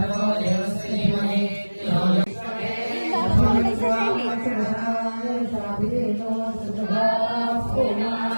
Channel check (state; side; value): inverted; both; correlation -1.00